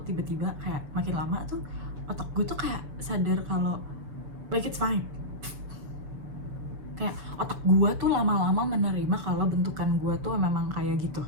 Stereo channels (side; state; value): left; late; 6.9 ms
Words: tiba-tiba kayak makin lama tuh otak gue tuh kayak sadar kalau like it's fine. Kayak otak gue tuh lama-lama menerima kalau bentukan gue tuh memang kayak gitu.